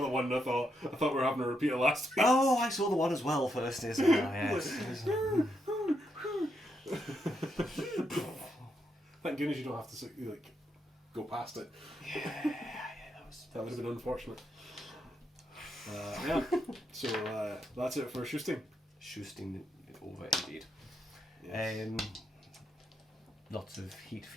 the one and I thought we were having a repeat of last week. Oh, I saw the one as well first. Yes. Thank goodness you don't have to go past it. Yeah, that would have been unfortunate. Yeah. So that's it for Shoosting. Shoosting over indeed. Yes. Lots of heat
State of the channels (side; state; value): both; normal; correlation 0.80